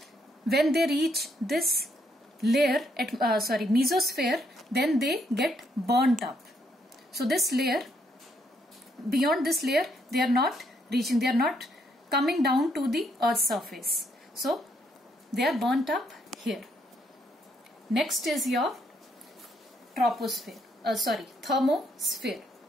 when they reach this layer, mesosphere, then they get burnt up. So this layer, beyond this layer, they are not reaching, they are not coming down to the Earth's surface. So they are burnt up here. Next is your thermosphere.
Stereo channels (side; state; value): both; normal; correlation 0.73